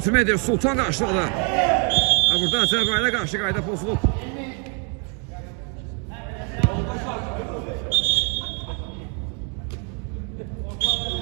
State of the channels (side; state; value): left; quieter; 37.8 dB